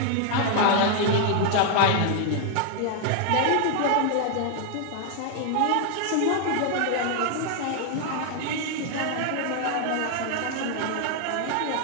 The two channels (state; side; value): different; both; correlation 0.00